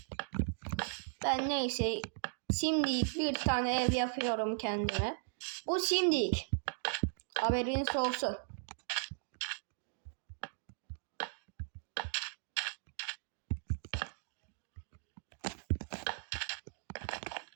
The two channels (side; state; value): left; silent; digital silence